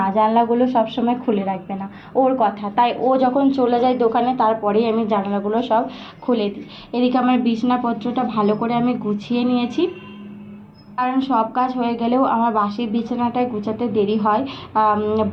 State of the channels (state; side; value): identical; both; correlation 1.00